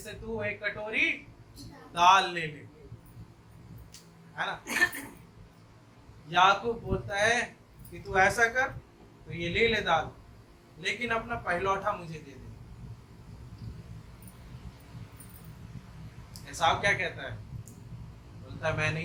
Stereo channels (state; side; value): identical; both; correlation 1.00